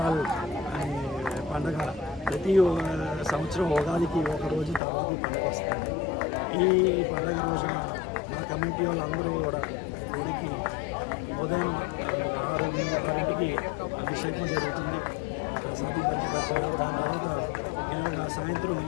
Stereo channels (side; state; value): right; drops out; at 4.8 s